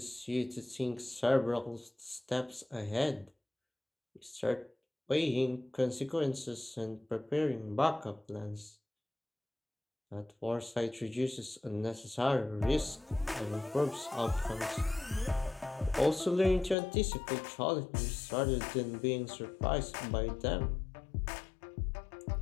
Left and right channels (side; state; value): right; drops out; at 16.8 s